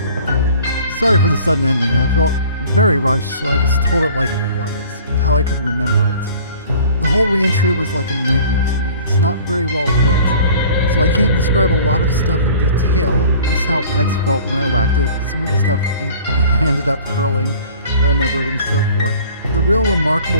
Sorry for the sudden ending. I felt very rushed, so I just told it like it was, how I could remember it. The whole reentry was like a nightmare to me. It's not very well lit, so I can't describe a lot of stuff in detail, just how X felt when I whacked it, some of the stuff I ended up hurling, I remembered, and so forth. The real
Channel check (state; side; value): inverted; both; correlation -0.48